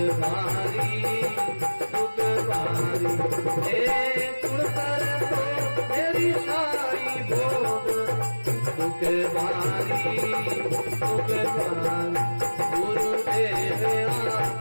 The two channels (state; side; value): inverted; both; correlation -1.00